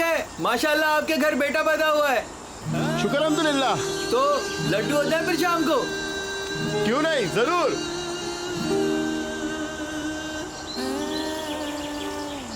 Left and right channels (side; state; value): both; identical; correlation 1.00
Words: माशाल्लाह आपके घर बेटा पैदा हुआ है। शुक्र अल्हम्दुलिल्लाह। तो लड्डू होता है फिर शाम को? क्यों नहीं, जरूर।